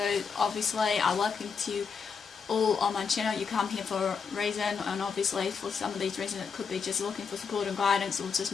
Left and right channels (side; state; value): right; quieter; 5.9 dB